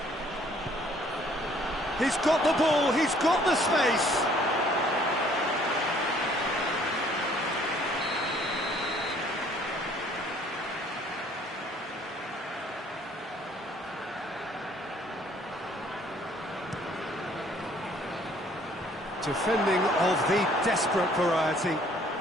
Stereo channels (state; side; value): normal; both; correlation 0.60